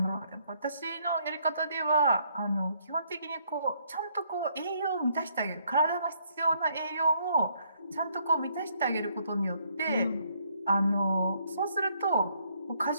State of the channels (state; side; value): inverted; both; correlation -0.69